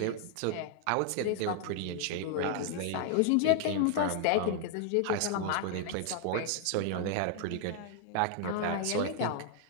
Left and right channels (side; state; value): both; different; correlation 0.00